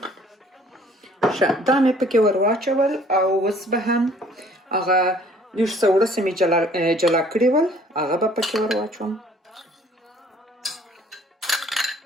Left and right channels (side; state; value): both; normal; correlation 0.56